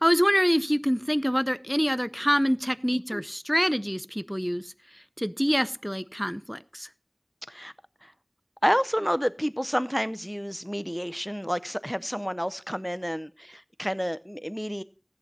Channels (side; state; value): both; identical; correlation 1.00